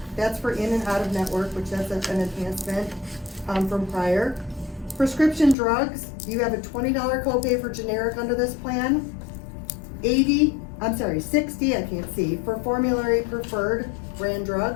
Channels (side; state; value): right; drops out; at 5.6 s